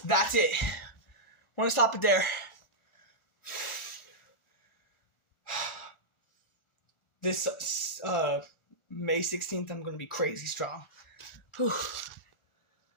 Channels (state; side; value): late; right; 1.4 ms